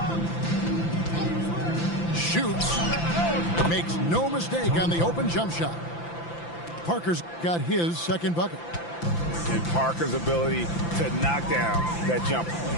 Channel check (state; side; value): late; right; 5.9 ms